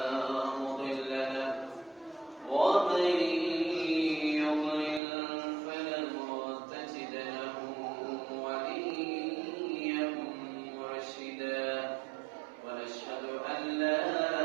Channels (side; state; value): left; drops out; at 5.0 s